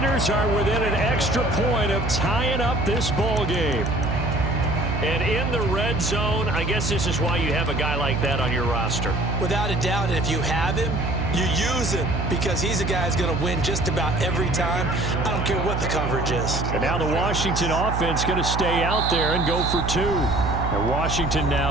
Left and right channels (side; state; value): right; noise; hum, 2 dB below the sound